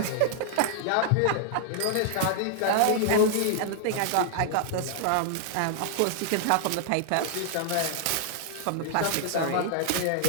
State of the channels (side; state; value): both; different; correlation -0.01